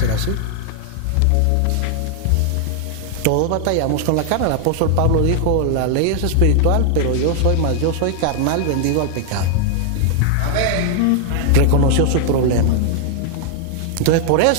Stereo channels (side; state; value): both; different; correlation 0.00